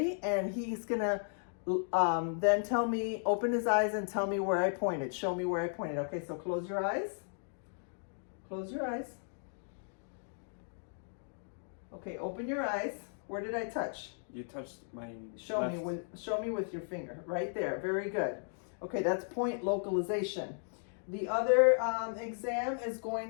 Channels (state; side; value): silent; right; digital silence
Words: and he's gonna then tell me, open his eyes and tell me where I pointed. Show me where I pointed. Okay, so close your eyes. Close your eyes. Okay, open your eyes. Where did I touch? You touched my Show left. show me with your finger. Right there. Very good. Okay, that's point localization. The other exam is